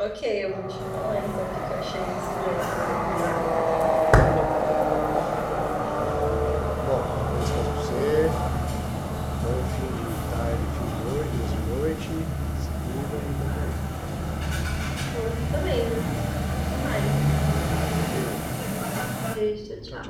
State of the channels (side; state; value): both; identical; correlation 1.00